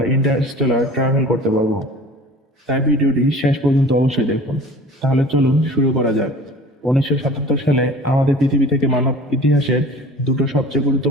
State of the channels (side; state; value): both; normal; correlation 0.42